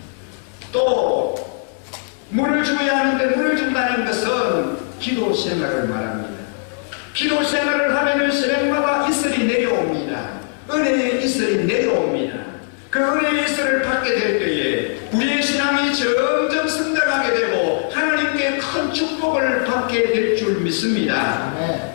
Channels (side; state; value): right; silent; digital silence